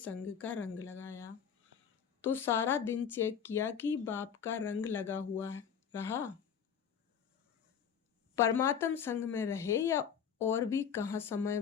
का रंग लगाया। तो सारा दिन चेक किया कि बाप का रंग लगा हुआ रहा, परमात्म संग में रहे, या और भी कहाँ समय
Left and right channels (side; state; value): right; quieter; 7.8 dB